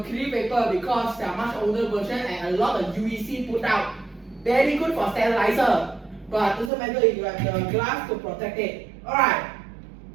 vapor because they are much older version and a lot of UVC put out. Very good for sterilizer. But doesn't matter if you have the glass to protect it. Alright.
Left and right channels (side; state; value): left; drops out; at 6.7 s